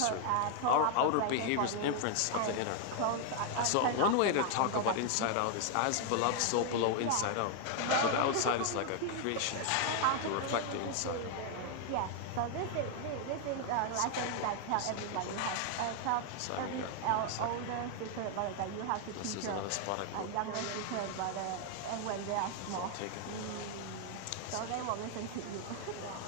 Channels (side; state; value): both; different; correlation 0.00